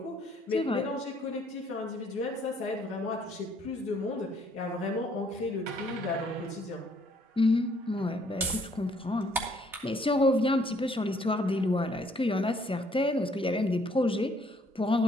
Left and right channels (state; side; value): normal; both; correlation 0.64